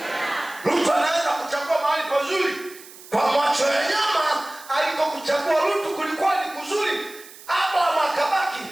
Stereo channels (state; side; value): noise; right; hiss, 19 dB below the sound